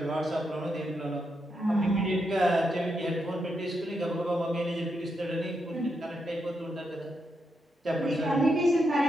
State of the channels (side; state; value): both; normal; correlation 0.82